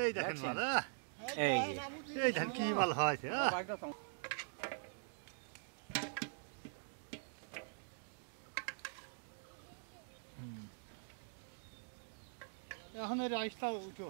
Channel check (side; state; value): left; silent; digital silence